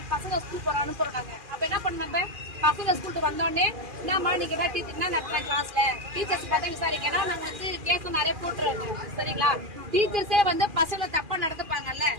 பசங்க ஸ்கூல் போற அனுப்புறாங்க. அப்ப என்ன பண்ண நம்ம பசங்க ஸ்கூலுக்கு வந்தோடனே என்னம்மா நீங்க என்ன டீச்சர் நடத்துறேன் கிளாஸ்ல டீச்சர்ஸ் பார்த்தா விசாரிக்கனா நாங்க வந்து கேஸ் நிறைய போட்டுருவோம். சரிங்களா? டீச்சர்ஸே வந்து பசங்களை தப்பா நடத்துப்பாங்கல்ல,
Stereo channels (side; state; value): left; late; 2.4 ms